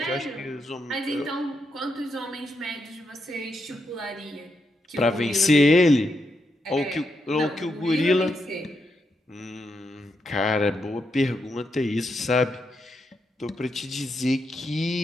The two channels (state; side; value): normal; both; correlation 0.82